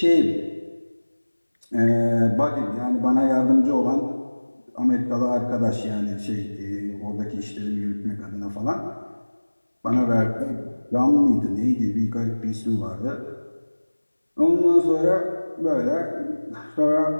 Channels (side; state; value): both; inverted; correlation -1.00